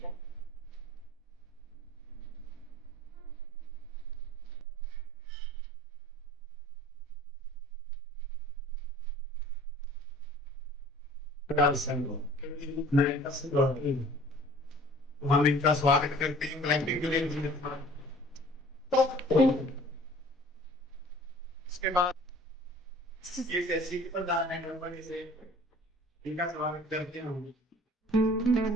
हम इनका स्वागत करते हैं क्लाइंबिंग के लिए। इसके बाद ये कैसी प्रधान है कंपनी से इनका स्वागत करते हैं हम।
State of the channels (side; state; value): both; normal; correlation 0.50